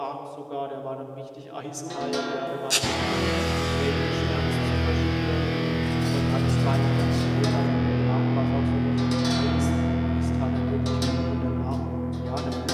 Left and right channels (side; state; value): both; identical; correlation 1.00